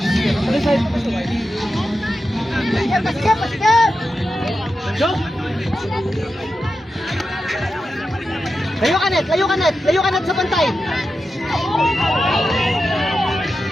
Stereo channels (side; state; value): both; normal; correlation 0.90